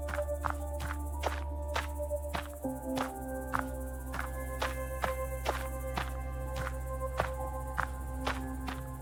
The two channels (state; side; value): noise; right; hum, 24 dB below the sound